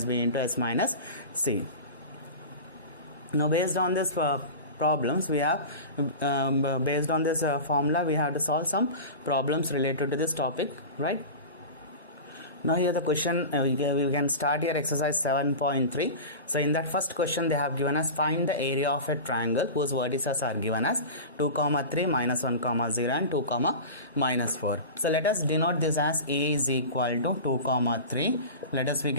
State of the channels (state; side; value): inverted; both; correlation -0.30